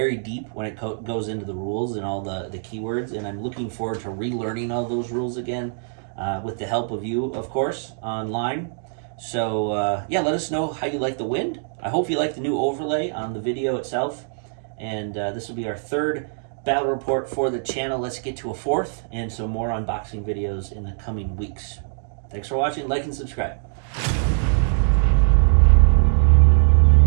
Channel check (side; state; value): left; silent; digital silence